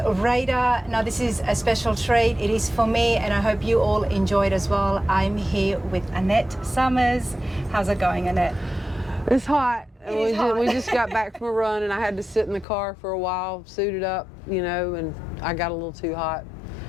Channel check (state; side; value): drops out; right; at 12.7 s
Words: Radar. Now, this is a special treat. It is for me, and I hope you all enjoyed as well. I'm here with Annette Summers. How's it going, Annette? it's hot. Hot. We just got back from a run and I had to sit in the car for a while, suited up, you know, and I got a little too hot.